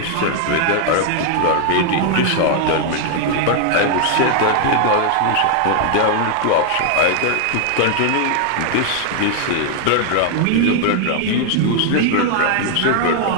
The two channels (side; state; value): both; different; correlation 0.00